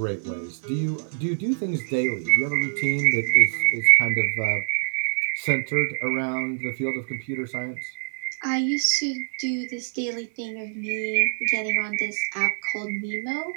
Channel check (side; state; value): left; silent; digital silence